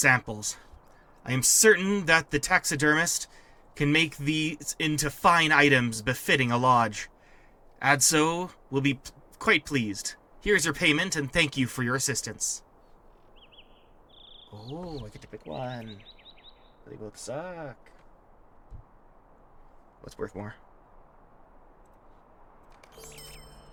I am certain that the taxidermist can make these into fine items befitting a lodge. Adso will be quite pleased. Here's your payment, and thank you for your assistance. Oh, I get to pick one. They both suck. What's worth more?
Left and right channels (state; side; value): identical; both; correlation 1.00